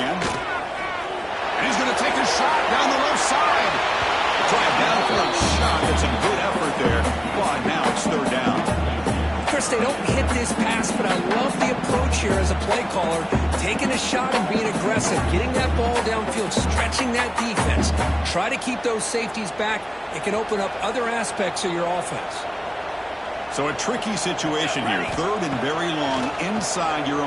And he's going to take a shot down the left side. Drive down for a shot. It's a good effort there. But now it's third down. Chris, they don't hit this pass, but I love the approach here as a play caller. Taking a shot and being aggressive. Getting that ball downfield, stretching that defense. Try to keep those safeties back. It can open up other aspects of your offense. So a tricky situation here. Third and very long inside your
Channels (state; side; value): identical; both; correlation 1.00